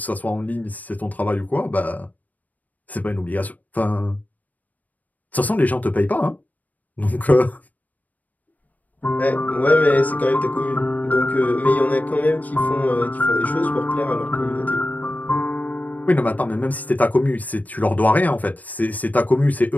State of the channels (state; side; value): late; right; 0.078 ms